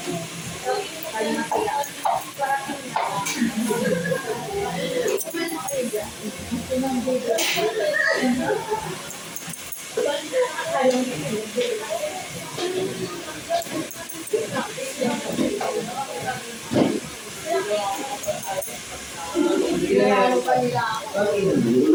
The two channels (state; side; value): identical; both; correlation 1.00